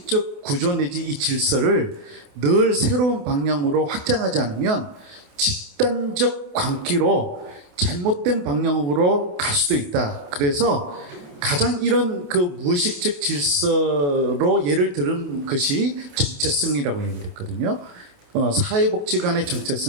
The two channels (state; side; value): late; left; 28 ms